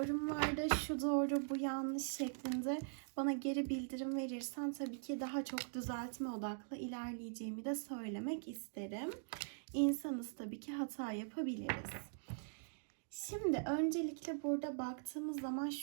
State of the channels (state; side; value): silent; left; digital silence